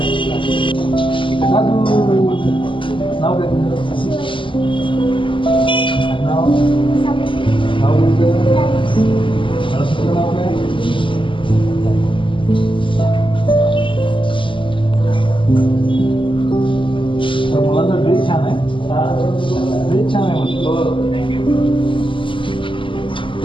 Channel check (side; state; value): right; late; 0.25 ms